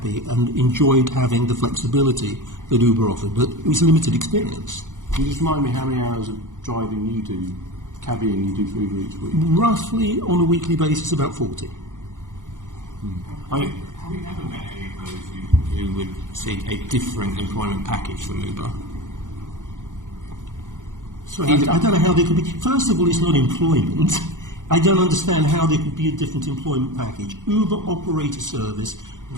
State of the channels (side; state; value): left; late; 0.87 ms